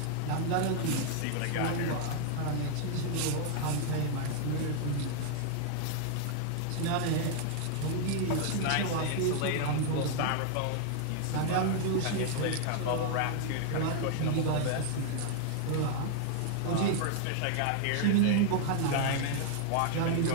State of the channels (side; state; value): both; different; correlation 0.00